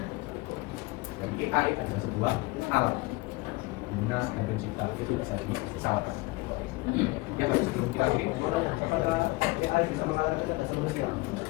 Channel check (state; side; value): quieter; right; 23.1 dB